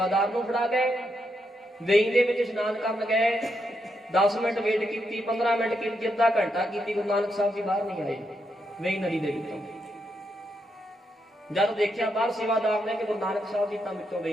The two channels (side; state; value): both; normal; correlation 0.81